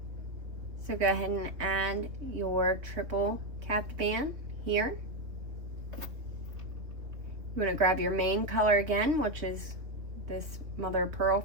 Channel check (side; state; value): left; late; 3.5 ms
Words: So go ahead and add your triple capped band here. You want to grab your main color again, which is this mother of pearl